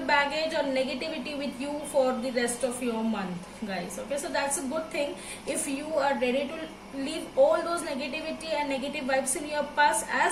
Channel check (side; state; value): both; identical; correlation 1.00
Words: baggage or negativity with you for the rest of your month, guys. Okay, so that's a good thing. If you are ready to leave all those negativity and negative vibes in your past,